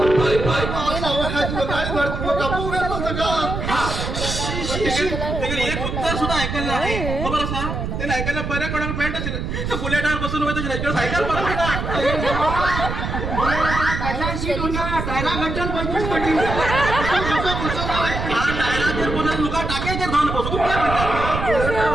एक उत्तर सुद्धा ऐकायला आहे खबर असा त्याला ऐकायला बऱ्या कोणाला पॅन्ट असेल बुलेटावर बसून होतं सायकल डायरा घंटन 25 पटी लुका टाकायचे धान बसू तू काय म्हणतात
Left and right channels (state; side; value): noise; right; rumble, 4 dB below the sound